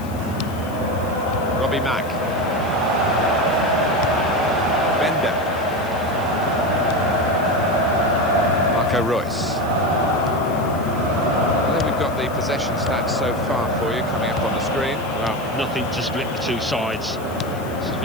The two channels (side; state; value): left; noise; hiss, 21 dB below the sound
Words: Robbie Mack. Bender. Marco Royce. Well, then we've got the possession stats so far for you coming up on the screen. Well, nothing to split the two sides. This is